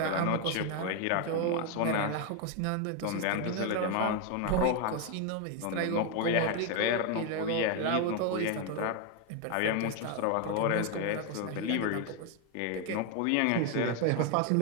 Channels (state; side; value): different; both; correlation 0.01